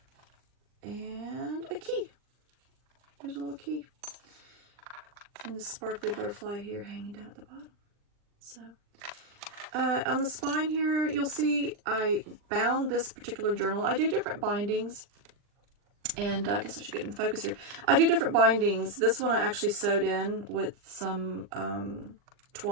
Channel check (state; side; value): late; left; 39 ms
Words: and a key. There's a little key. And the sparkly butterfly here hanging down at the bottom. So, on the spine here, you'll see I bound this particular journal. I do different bindings, and I guess I should get in focus here. I do different bindings. This one I actually sewed in with some